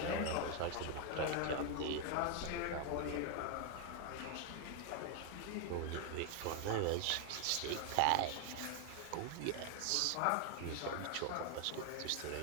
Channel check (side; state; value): both; different; correlation 0.00